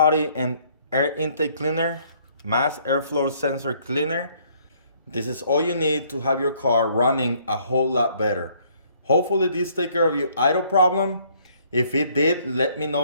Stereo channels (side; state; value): both; inverted; correlation -0.64